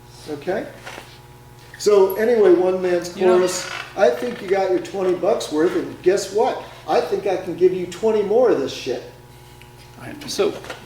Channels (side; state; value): both; identical; correlation 1.00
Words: Okay? So anyway, one man's chorus. I think you got your $20 worth, and guess what? I think I can give you 20 more of this shit. So,